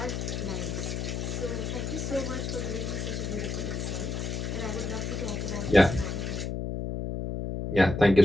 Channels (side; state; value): left; noise; hum, 3 dB below the sound